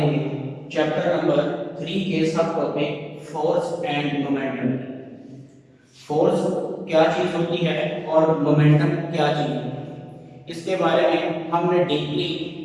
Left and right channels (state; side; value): identical; both; correlation 1.00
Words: चैप्टर नंबर 3 के सब टॉपिक फोर्स एंड मोमेंटम की। फोर्स क्या चीज़ होती है और मोमेंटम क्या चीज़ है, इसके बारे में हमने डीपली